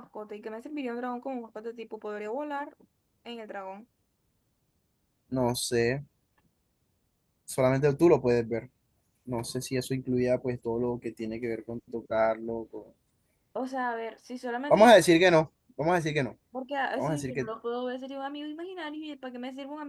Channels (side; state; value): both; identical; correlation 1.00